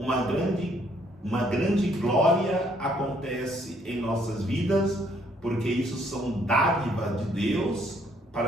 grande glória acontece em nossas vidas, porque isso são dádivas de Deus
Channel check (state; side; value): normal; both; correlation 0.67